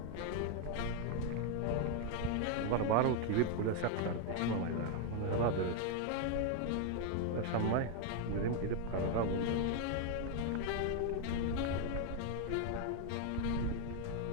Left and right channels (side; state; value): both; different; correlation 0.01